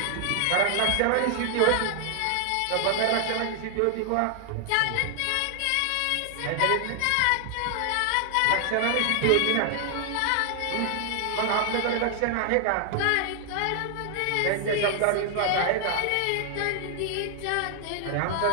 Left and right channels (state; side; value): different; both; correlation 0.00